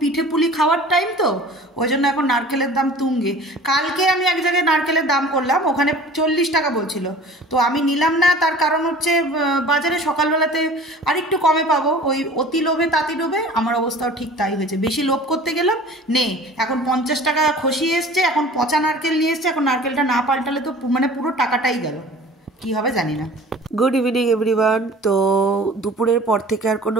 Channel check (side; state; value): both; normal; correlation 0.44